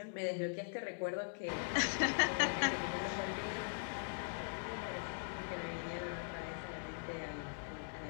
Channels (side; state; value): right; silent; digital silence